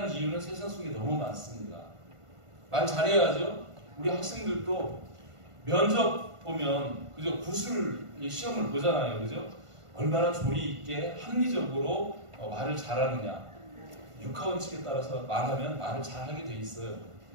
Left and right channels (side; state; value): left; late; 1.5 ms